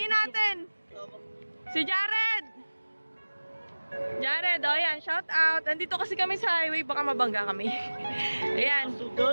natin. Si Jared. Jared, oh yan, shout out. Nandito kasi kami sa highway, baka mabangga kami. Ayan.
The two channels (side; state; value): both; inverted; correlation -1.00